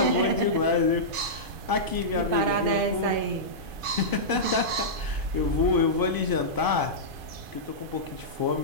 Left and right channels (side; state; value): left; late; 2.5 ms